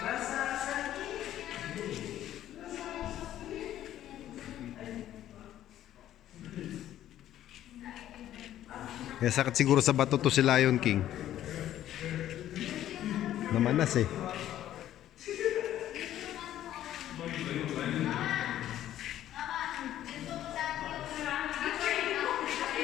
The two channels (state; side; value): quieter; right; 12.3 dB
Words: Kaya sakit siguro sa bato to si Lion King. Namanas eh.